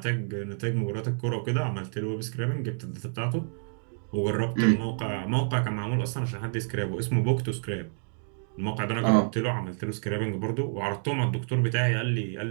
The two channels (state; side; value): silent; left; digital silence